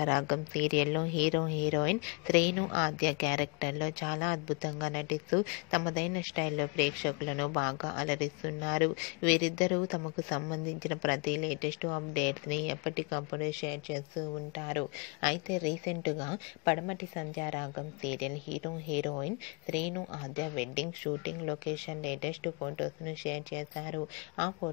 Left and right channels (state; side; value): quieter; right; 32.8 dB